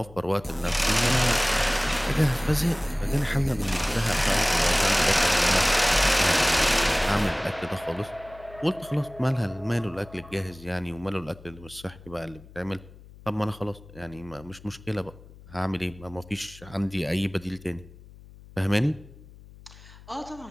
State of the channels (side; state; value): left; noise; hum, 20 dB below the sound